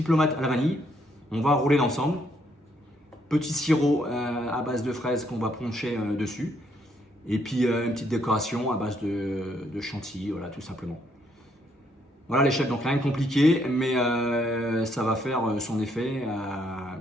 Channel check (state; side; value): normal; both; correlation 0.72